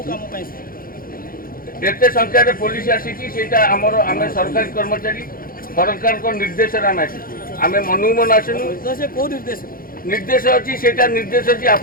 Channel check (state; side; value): late; right; 0.42 ms